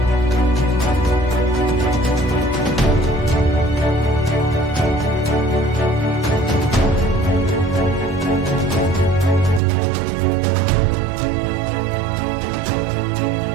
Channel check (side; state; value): left; drops out; at 9.6 s